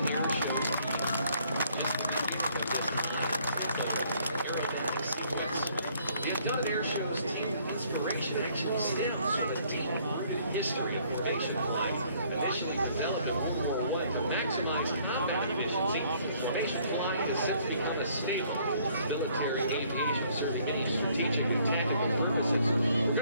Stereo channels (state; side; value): inverted; both; correlation -0.63